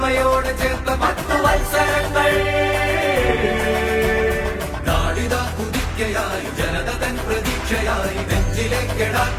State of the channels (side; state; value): both; identical; correlation 1.00